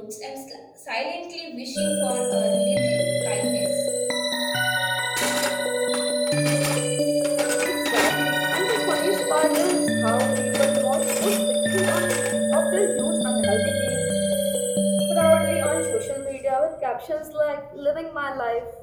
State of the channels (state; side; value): identical; both; correlation 1.00